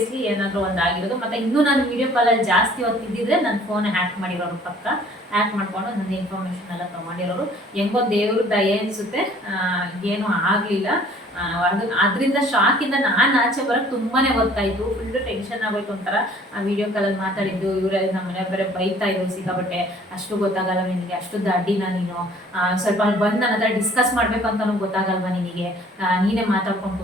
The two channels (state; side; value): normal; both; correlation 0.54